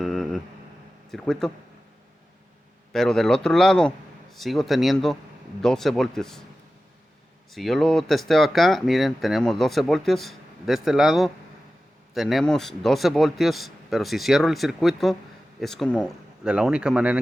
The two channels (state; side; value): normal; both; correlation 0.94